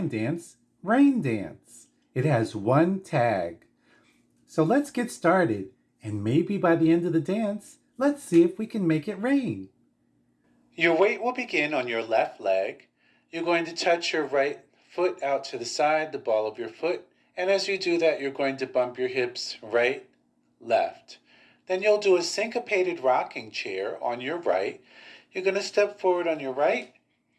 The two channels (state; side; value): identical; both; correlation 1.00